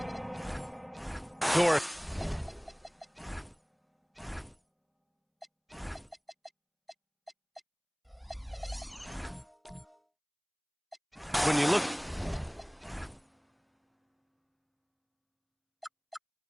Dort. when you look.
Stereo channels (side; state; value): both; identical; correlation 1.00